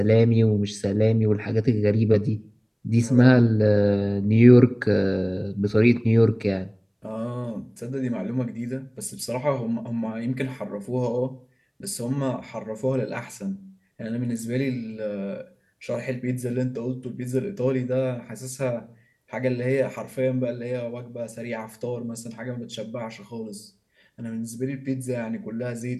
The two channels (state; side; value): identical; both; correlation 1.00